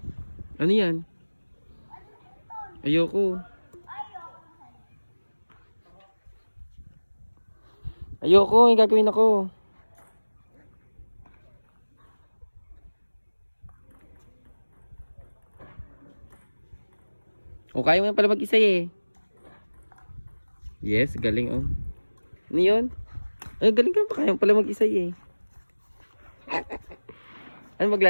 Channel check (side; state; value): both; inverted; correlation -1.00